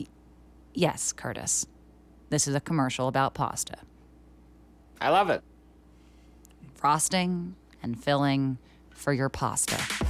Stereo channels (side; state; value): both; identical; correlation 1.00